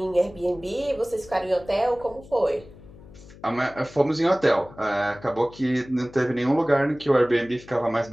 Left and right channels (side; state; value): left; noise; hum, 20 dB below the sound